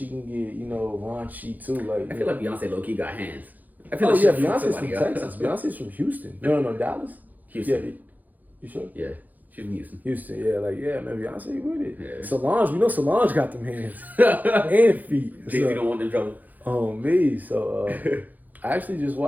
can get, you know, raunchy too. Like, I feel like Beyonce low key got hands. I feel Beyonce's from Texas. Beyonce's from Houston. No, Dallas. Houston. Yeah, you sure? Yeah, she's from Houston. Man, Beyonce with it. Yeah. Solange, we know Solange got them hands and feet. Jay-Z don't want them trouble. Oh me, so I actually just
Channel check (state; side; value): late; left; 0.082 ms